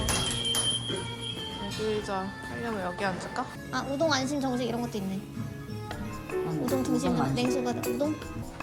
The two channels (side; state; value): both; identical; correlation 1.00